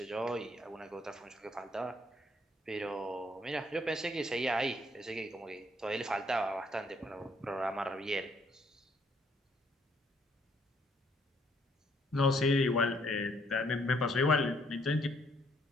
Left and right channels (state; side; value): normal; both; correlation 0.67